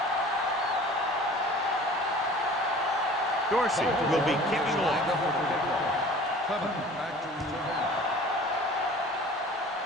Dorsey will be kicking off.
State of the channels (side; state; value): both; normal; correlation 0.45